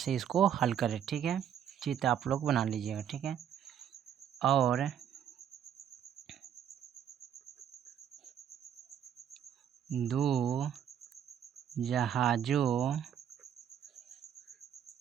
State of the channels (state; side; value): quieter; left; 9.2 dB